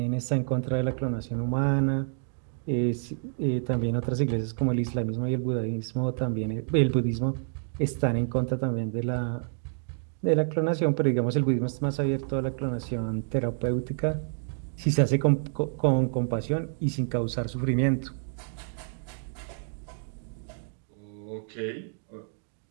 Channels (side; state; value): left; silent; digital silence